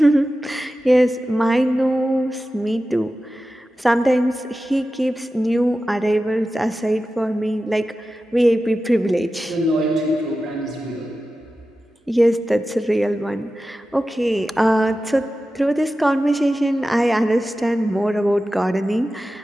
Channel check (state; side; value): normal; both; correlation 0.94